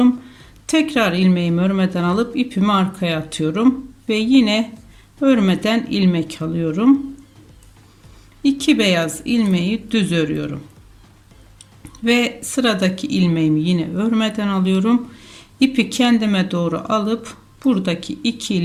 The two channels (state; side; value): identical; both; correlation 1.00